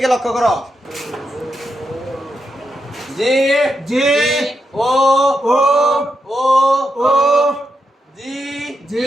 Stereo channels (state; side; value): normal; both; correlation 0.85